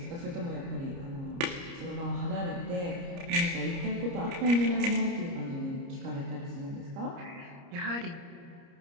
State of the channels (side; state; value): left; late; 29 ms